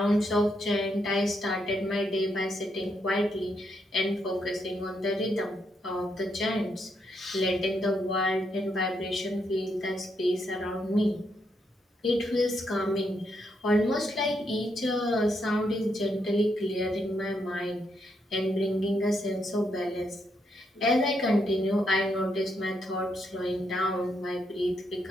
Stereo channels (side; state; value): both; normal; correlation 0.78